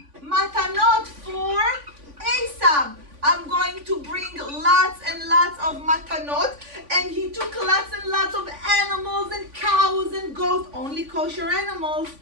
matanot for Esav. I'm going to bring lots and lots of matanot. And he took lots and lots of animals and cows and goats, only kosher animals,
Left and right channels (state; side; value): late; left; 3.5 ms